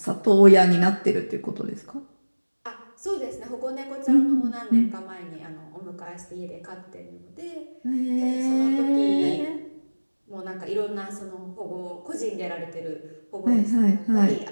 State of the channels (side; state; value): both; inverted; correlation -1.00